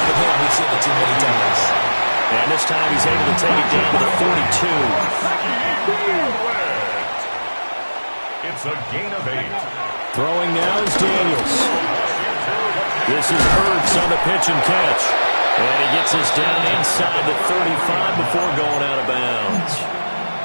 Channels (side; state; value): both; inverted; correlation -1.00